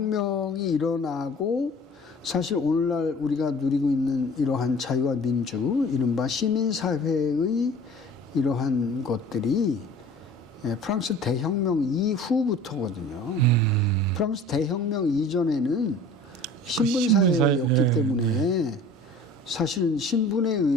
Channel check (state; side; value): normal; both; correlation 0.45